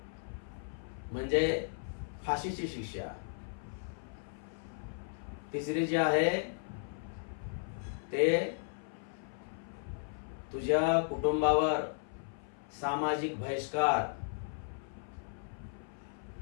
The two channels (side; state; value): right; silent; 54 dB below the other